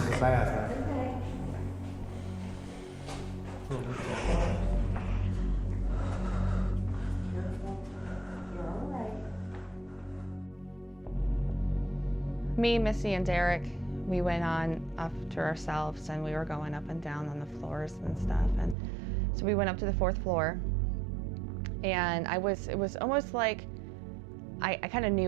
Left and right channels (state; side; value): drops out; left; at 18.8 s